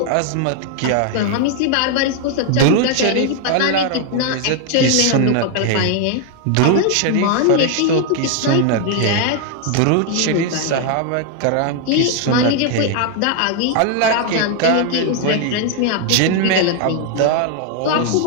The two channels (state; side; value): different; both; correlation 0.00